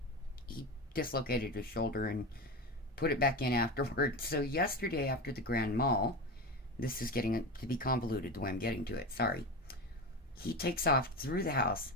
dislocated his shoulder and put it back in afterwards. So yesterday after the grand mal, this is getting to be convoluted the way I'm getting to it, sorry. He takes off through the house,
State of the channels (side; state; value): both; normal; correlation 0.23